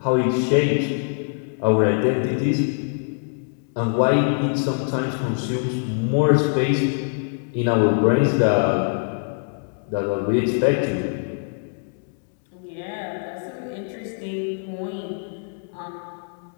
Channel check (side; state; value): right; silent; digital silence